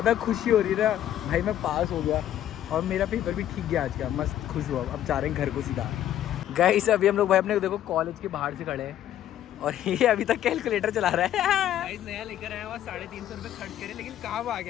खुशी हो रही है ना भाई, मैं पास हो गया और मेरा पेपर भी ठीक गया आज का। मस्त खुश हुआ। अब जा रहे हैं घर को सीधा। गाइस अभी हम लोग भाई अपने देखो कॉलेज के बाहर से खड़े हैं और ये अभी तक कैलकुलेटर चला रहा है। गाइस नया लेकर आया हुआ 350 रुपए खर्च करे, लेकिन काम आ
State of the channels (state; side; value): quieter; right; 11.7 dB